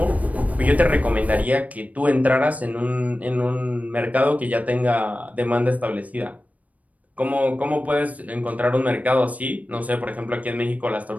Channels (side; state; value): left; late; 0.070 ms